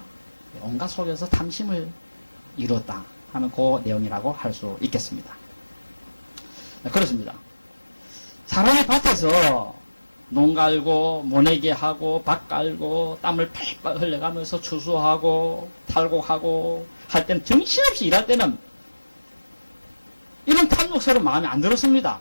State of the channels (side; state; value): both; inverted; correlation -1.00